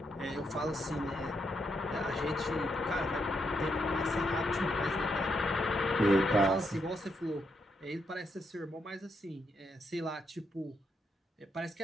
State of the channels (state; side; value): normal; both; correlation 0.80